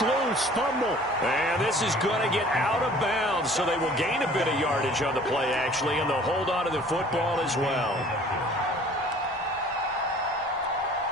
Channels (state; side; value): normal; both; correlation 0.50